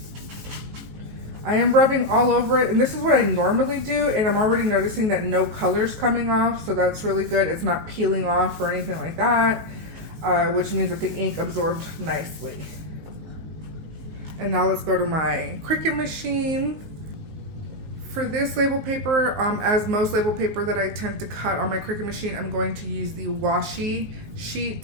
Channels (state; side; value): late; left; 19 ms